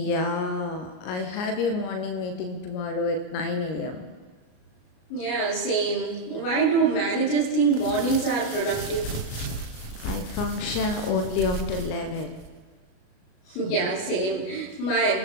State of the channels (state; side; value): late; right; 36 ms